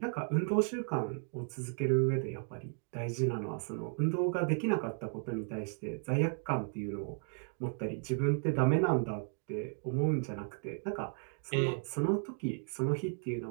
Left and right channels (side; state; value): left; silent; 55 dB below the other